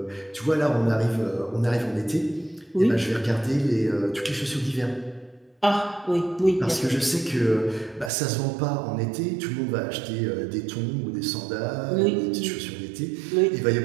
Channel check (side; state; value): left; drops out; at 8.1 s